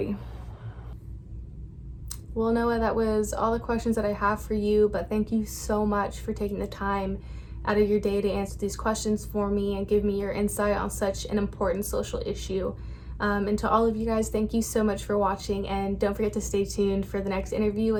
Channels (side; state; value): both; identical; correlation 1.00